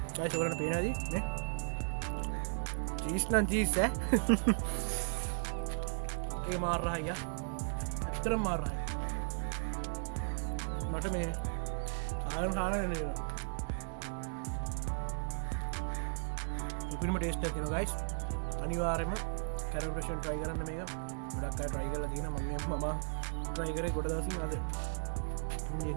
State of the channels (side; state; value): left; silent; digital silence